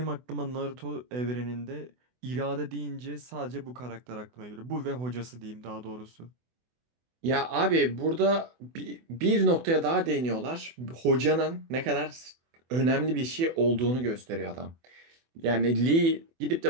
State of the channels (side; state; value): left; late; 24 ms